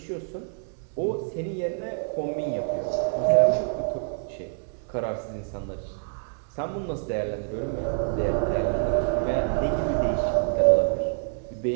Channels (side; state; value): left; silent; 60 dB below the other